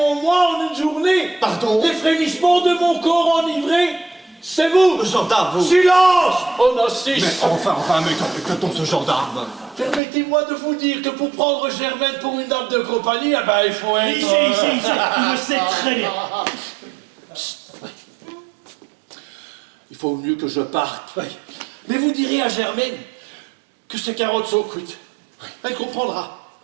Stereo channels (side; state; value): left; drops out; at 10.0 s